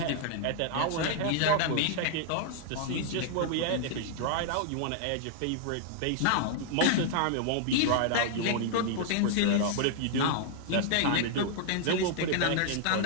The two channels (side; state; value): both; different; correlation -0.01